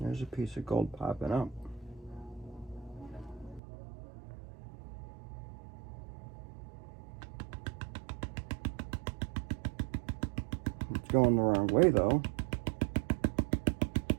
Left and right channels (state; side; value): drops out; left; at 3.6 s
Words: piece of gold popping up. It's going the wrong way though.